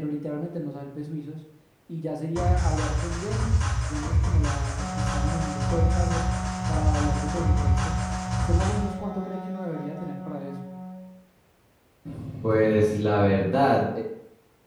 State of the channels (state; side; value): identical; both; correlation 1.00